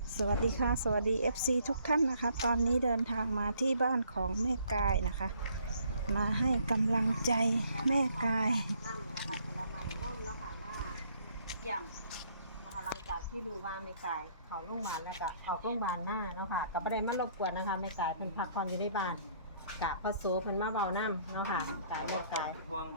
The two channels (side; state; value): both; inverted; correlation -0.64